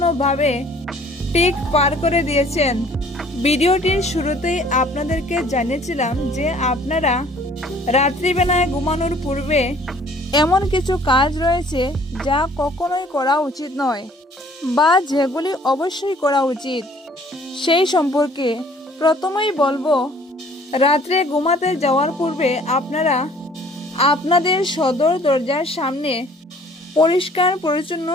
ঠিক পার করে দিয়েছেন। ভিডিওটির শুরুতেই আপনাদেরকে জানিয়েছিলাম যে আপনারা রাত্রিবেলায় ঘুমানোর পূর্বে এমন কিছু কাজ রয়েছে যা কখনোই করা উচিত নয় বা যেগুলি অবশ্যই করা উচিত। সেই সম্পর্কে প্রথমেই বলবো, রাত্রে ঘুমাতে যাওয়ার পূর্বে আপনারা আপনাদের সদর দরজার সামনে পরিষ্কার পরিচ্ছন্ন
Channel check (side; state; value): both; normal; correlation 0.55